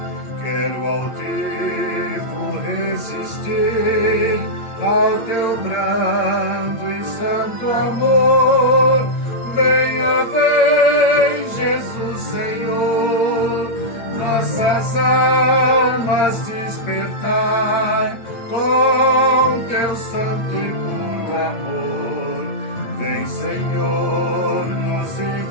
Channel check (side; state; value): right; late; 8.7 ms